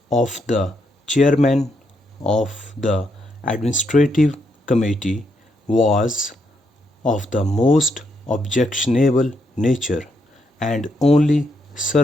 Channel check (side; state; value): both; normal; correlation 0.78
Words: of the chairman of the administrative committee was of the most objectionable nature and only